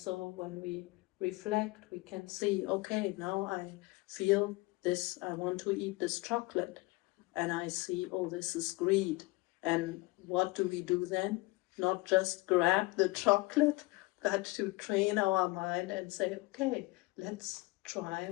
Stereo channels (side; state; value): right; quieter; 23.0 dB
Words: when we reflect, we can see, okay, now I feel this, I want to eat this chocolate. And I see, oh, this is greed. And what do we do then? Not just grab the chocolate, but to train our mind and say, okay, let's try